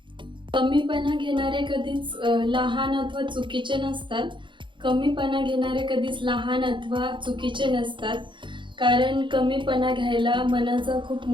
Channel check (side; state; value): left; late; 0.23 ms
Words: कमीपणा घेणारे कधीच लहान अथवा चुकीचे नसतात. कमीपणा घेणारे कधीच लहान अथवा चुकीचे नसतात, कारण कमीपणा घ्यायला मनाचा खूप